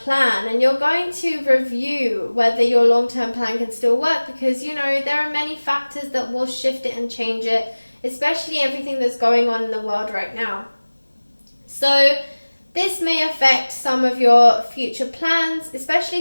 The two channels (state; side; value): inverted; both; correlation -1.00